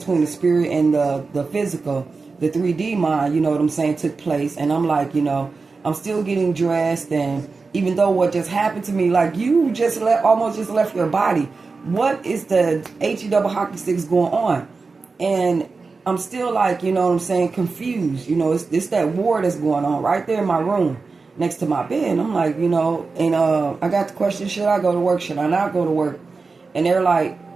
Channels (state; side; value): quieter; left; 4.3 dB